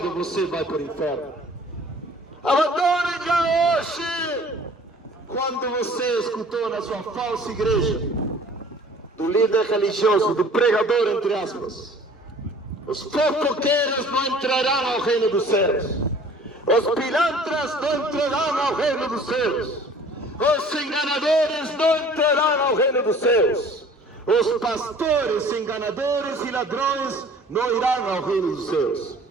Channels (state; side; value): normal; both; correlation 0.50